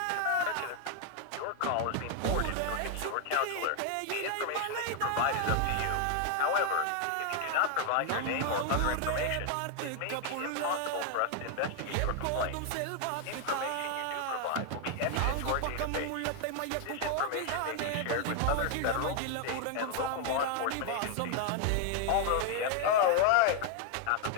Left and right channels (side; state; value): both; different; correlation 0.00